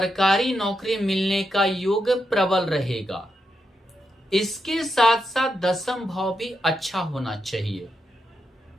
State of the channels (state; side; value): normal; both; correlation 0.84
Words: नौकरी मिलने का योग प्रबल रहेगा। इसके साथ साथ दसम भाव भी अच्छा होना चाहिए,